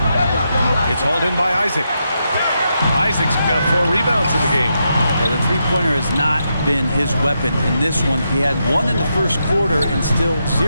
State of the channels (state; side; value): inverted; both; correlation -0.83